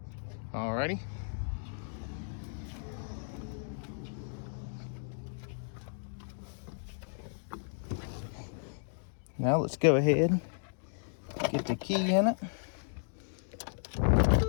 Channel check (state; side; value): silent; right; digital silence